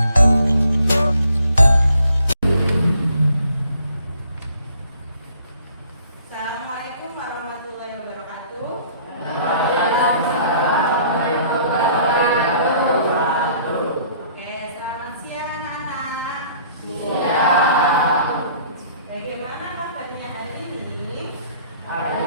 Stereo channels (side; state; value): both; inverted; correlation -0.59